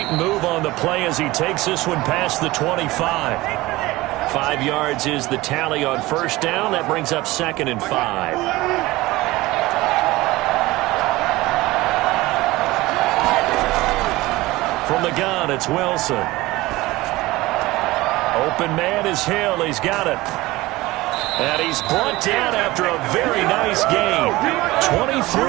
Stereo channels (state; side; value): quieter; left; 19.4 dB